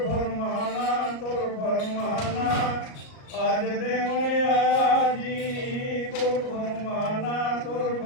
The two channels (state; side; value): late; right; 38 ms